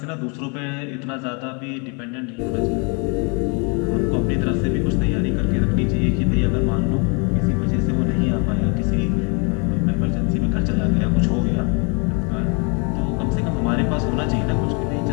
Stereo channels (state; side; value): quieter; right; 34.4 dB